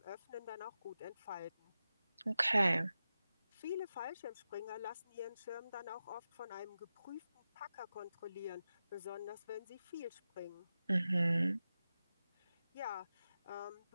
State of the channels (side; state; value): both; inverted; correlation -0.92